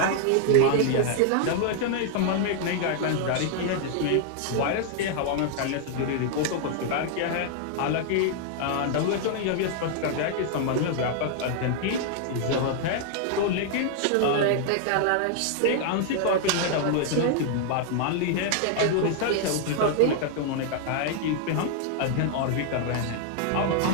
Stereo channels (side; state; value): both; different; correlation 0.00